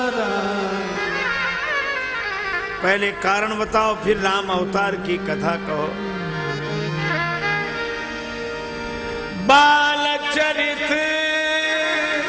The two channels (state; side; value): identical; both; correlation 1.00